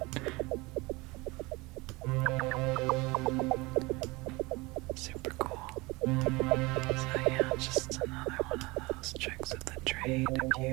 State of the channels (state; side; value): quieter; left; 23.6 dB